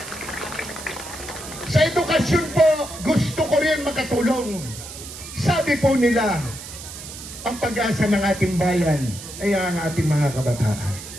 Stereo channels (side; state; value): right; noise; hiss, 12 dB below the sound